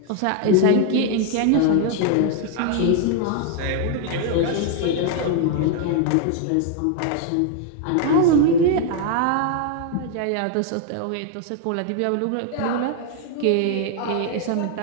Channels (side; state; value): both; different; correlation 0.00